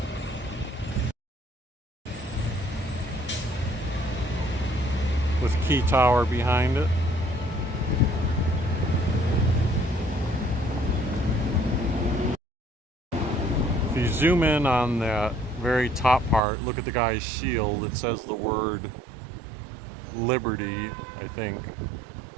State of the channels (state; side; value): drops out; left; at 16.4 s